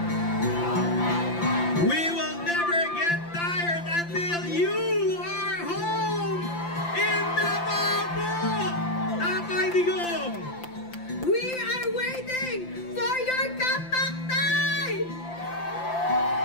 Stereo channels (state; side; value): late; right; 5.8 ms